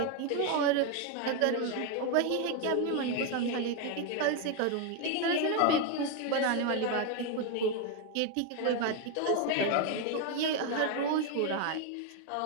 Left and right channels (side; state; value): both; different; correlation 0.01